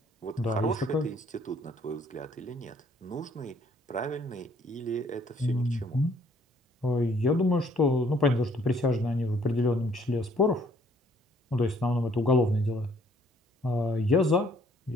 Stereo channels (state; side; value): normal; both; correlation 0.63